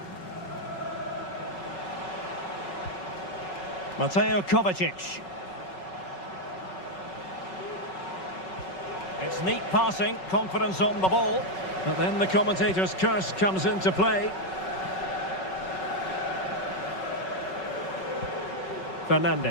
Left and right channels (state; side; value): late; right; 5.4 ms